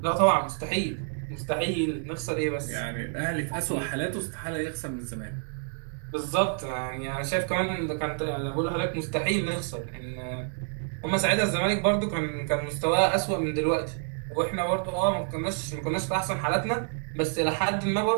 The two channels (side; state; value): left; silent; 56 dB below the other